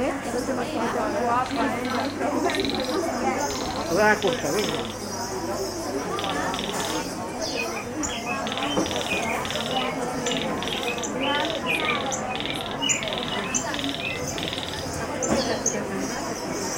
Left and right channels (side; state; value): both; identical; correlation 1.00